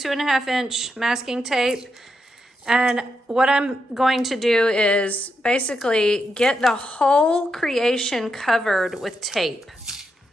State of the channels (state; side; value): normal; both; correlation 0.83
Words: inch masking tape. And what I'm going to do is basically get the whole creation covered with tape.